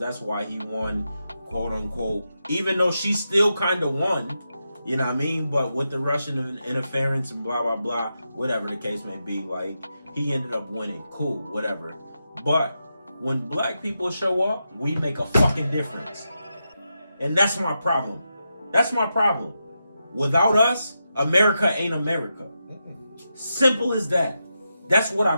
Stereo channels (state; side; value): inverted; both; correlation -0.87